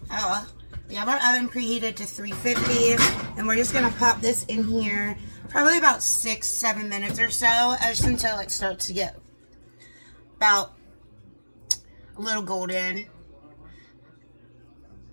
Oh, we have our oven preheated to 350, and we're just gonna pop this in here probably about 6-7 minutes or so, just until it starts to get about a little golden.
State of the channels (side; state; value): both; inverted; correlation -1.00